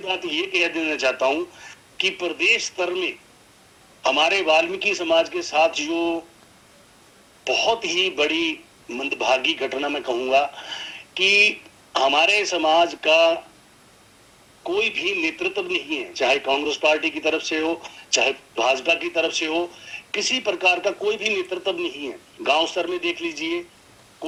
बात ये कह देना चाहता हूं कि प्रदेश स्तर में हमारे वाल्मीकि समाज के साथ जो बहुत ही बड़ी मंदभागी घटना मैं कहूंगा कि हमारे समाज का कोई भी नेतृत्व नहीं है, चाहे कांग्रेस पार्टी की तरफ से हो, चाहे भाजपा की तरफ से हो, किसी प्रकार का कोई भी नेतृत्व नहीं है। गांव स्तर में देख लीजिए,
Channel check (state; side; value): identical; both; correlation 1.00